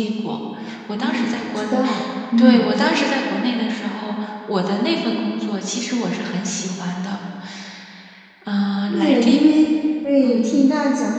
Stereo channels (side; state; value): both; identical; correlation 1.00